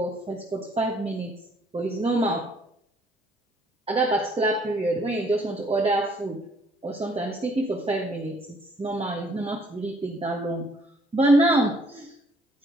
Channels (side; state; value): both; normal; correlation 0.63